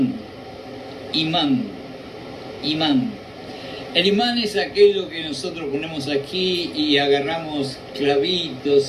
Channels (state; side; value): identical; both; correlation 1.00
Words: El imán es aquello que nosotros ponemos aquí y agarramos